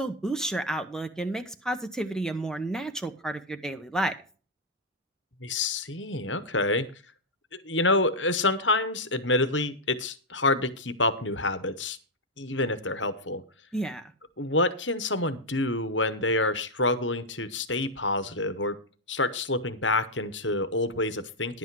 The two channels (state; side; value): normal; both; correlation -0.01